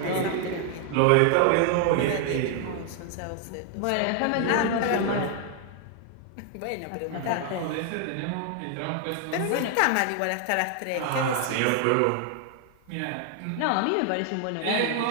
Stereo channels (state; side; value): different; both; correlation 0.00